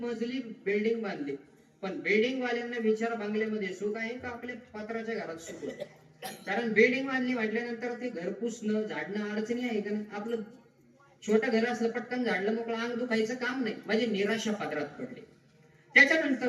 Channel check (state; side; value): identical; both; correlation 1.00